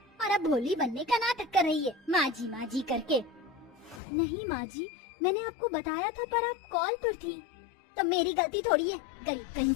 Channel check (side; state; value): right; drops out; at 4.0 s